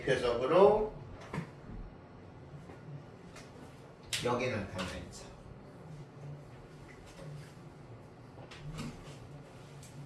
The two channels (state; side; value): identical; both; correlation 1.00